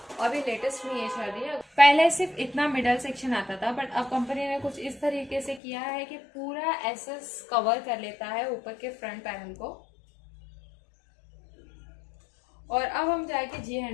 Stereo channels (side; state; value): right; drops out; at 5.6 s